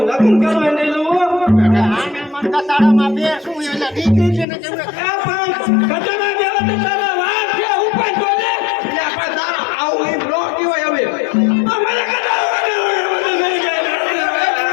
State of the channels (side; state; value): right; drops out; at 4.5 s